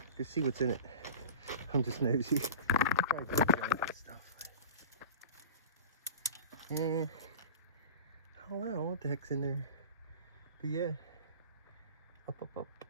Just see what's in it. I'm just nosy. Stuff. And I don't know what the heck's in there, but yeah, Up, up, up.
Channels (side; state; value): both; inverted; correlation -0.34